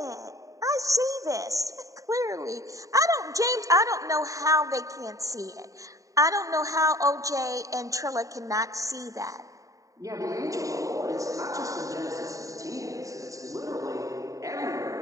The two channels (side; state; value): left; late; 0.16 ms